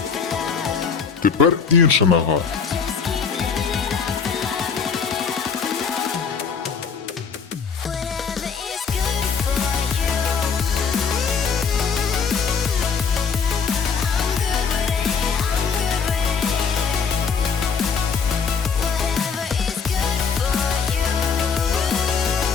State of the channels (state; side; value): quieter; right; 6.0 dB